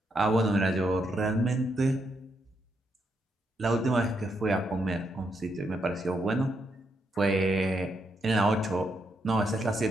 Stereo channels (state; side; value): normal; both; correlation 0.79